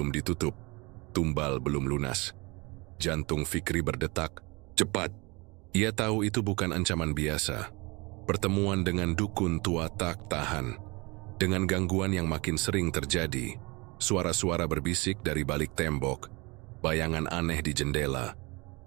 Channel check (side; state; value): left; quieter; 26.5 dB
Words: ditutup, tumbal belum lunas. Jantung Fikri berdetak cepat. Ia tahu itu bukan ancaman biasa. Pertemuan dengan dukun tua tak tahan. Dengan gangguan yang makin sering terjadi, suara-suara berbisik dari balik tembok, bayangan aneh di jendela,